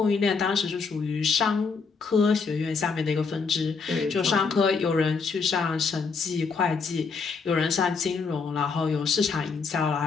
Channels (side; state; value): right; quieter; 5.0 dB